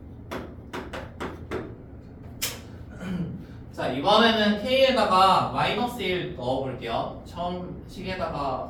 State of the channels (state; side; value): identical; both; correlation 1.00